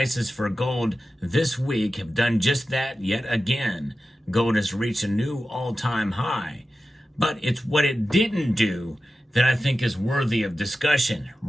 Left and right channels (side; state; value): both; normal; correlation 0.93